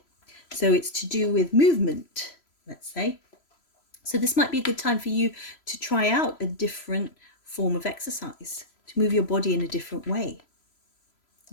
So it's to do with movement, let's say. So this might be a good time for you to try out a different form of exercise, to move your body in a different way.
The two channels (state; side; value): late; right; 3.0 ms